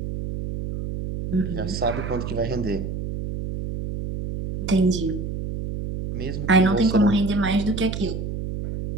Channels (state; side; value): noise; right; hum, 5 dB below the sound